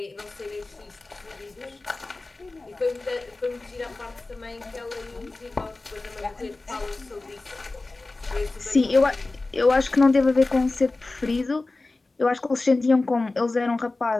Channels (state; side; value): quieter; right; 3.3 dB